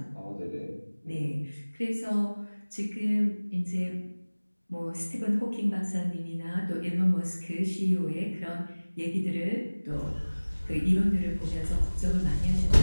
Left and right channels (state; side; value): inverted; both; correlation -1.00